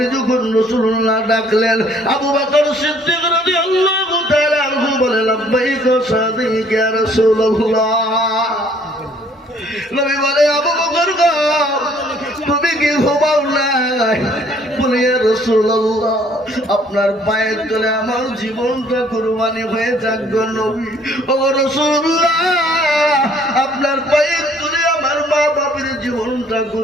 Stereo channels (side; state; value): both; normal; correlation 0.60